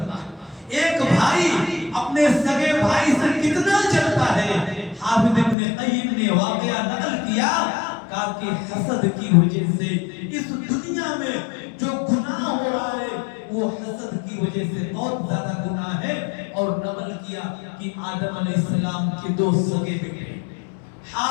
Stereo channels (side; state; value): right; drops out; at 5.6 s